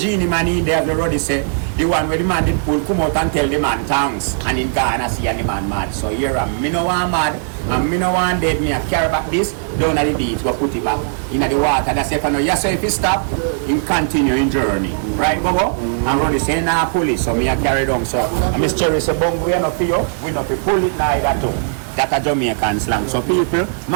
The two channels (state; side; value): silent; left; 61 dB below the other